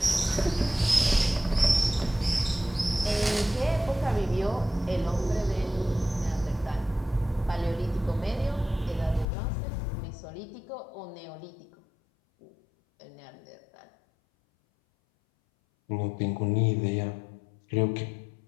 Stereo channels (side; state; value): right; drops out; at 9.2 s